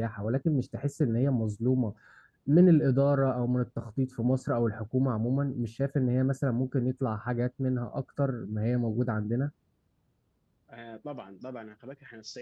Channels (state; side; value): identical; both; correlation 1.00